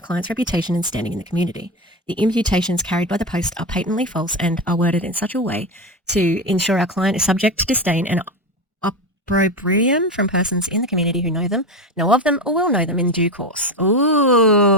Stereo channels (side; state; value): both; normal; correlation 0.18